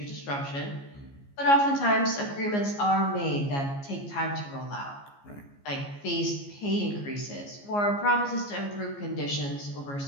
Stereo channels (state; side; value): late; right; 14 ms